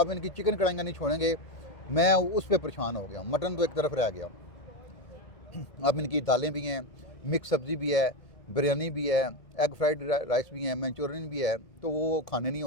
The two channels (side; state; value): right; late; 1.8 ms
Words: इनकी चिकन कढ़ाइयाँ नहीं छोड़ेंगे, मैं उस पर परेशान हो गया। मटन तो एक तरफ रह गया, अब इनकी दालें भी हैं, मिक्स सब्ज़ी भी है, बिरयानी भी है, एग फ्राइड राइस भी है, मंचूरियन भी है, तो वो खाने नहीं